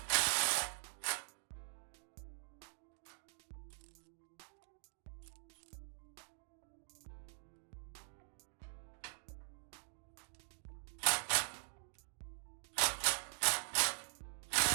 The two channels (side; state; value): left; silent; digital silence